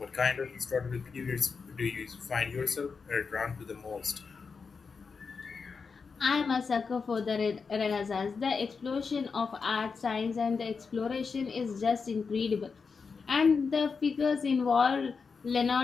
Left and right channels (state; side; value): quieter; right; 5.2 dB